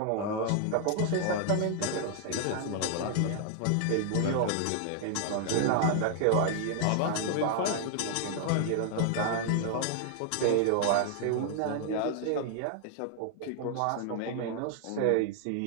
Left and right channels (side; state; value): both; different; correlation 0.00